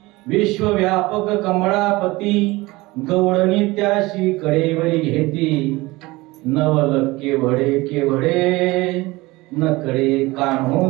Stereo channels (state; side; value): quieter; left; 21.2 dB